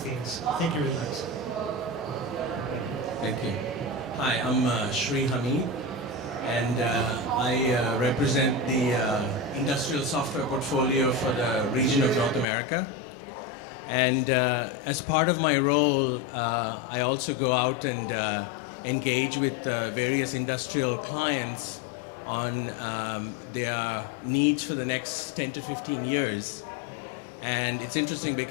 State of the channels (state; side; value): drops out; right; at 12.5 s